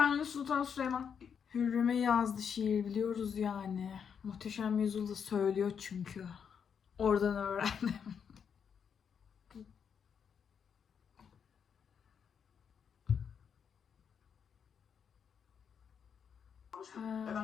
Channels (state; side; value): quieter; right; 7.2 dB